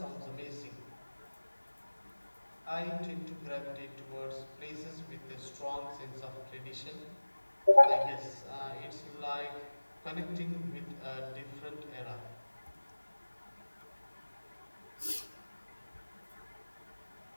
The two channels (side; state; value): both; inverted; correlation -1.00